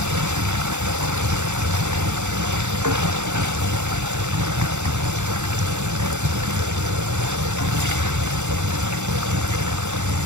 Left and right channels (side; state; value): left; late; 0.84 ms